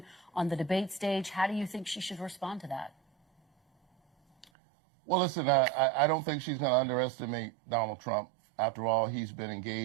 on the debate stage. How do you think she should respond to that? Well, listen, I don't think she's going to underestimate Donald Trump. After all, he's been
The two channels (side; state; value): left; drops out; at 4.5 s